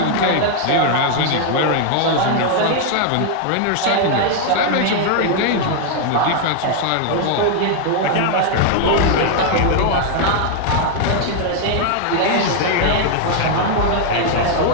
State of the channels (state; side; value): different; both; correlation 0.00